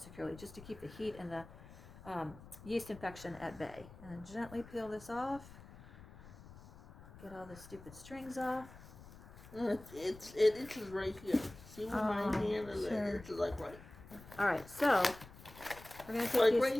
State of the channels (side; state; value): left; noise; rumble, 18 dB below the sound